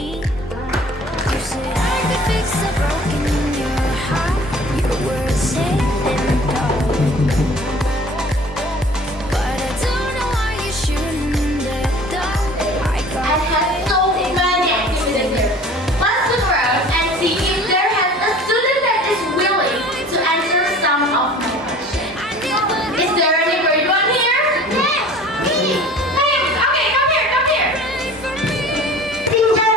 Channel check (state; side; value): normal; both; correlation 0.46